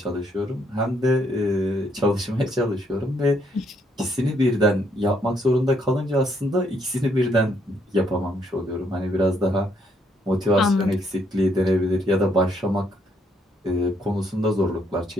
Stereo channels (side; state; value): both; normal; correlation 0.71